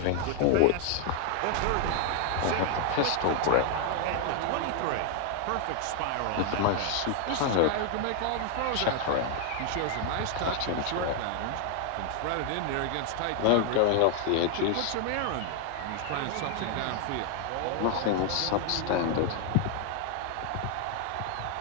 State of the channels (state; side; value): different; both; correlation 0.00